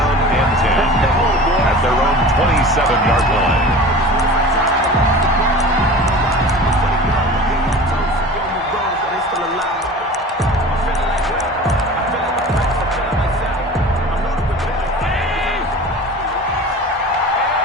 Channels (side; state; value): both; normal; correlation 0.38